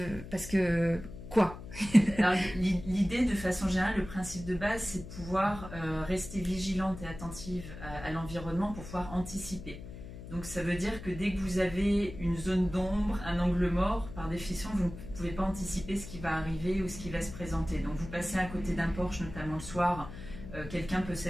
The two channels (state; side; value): noise; left; hum, 12 dB below the sound